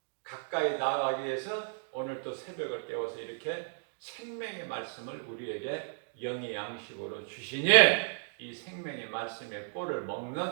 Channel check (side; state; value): left; silent; digital silence